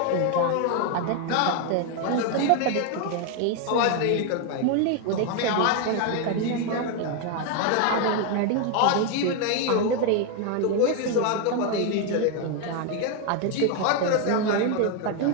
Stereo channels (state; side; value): different; both; correlation 0.01